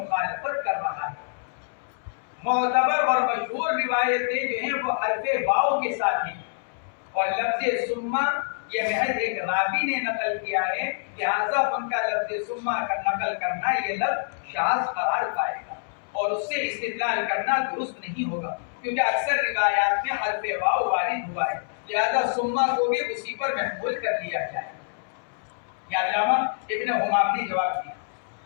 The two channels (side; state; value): right; silent; 61 dB below the other